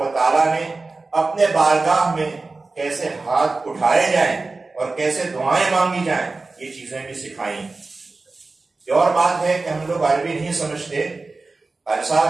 و تعالیٰ نے اپنے بارگاہ میں کیسے ہاتھ اٹھائے جائیں اور کیسے دعائیں مانگی جائیں یہ چیزیں بھی سکھائیں. یہ اور بات ہے کہ ہم لوگ عربی نہیں سمجھتے. قاری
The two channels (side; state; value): left; quieter; 3.6 dB